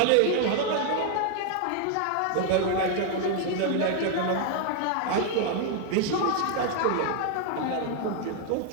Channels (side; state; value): both; different; correlation 0.00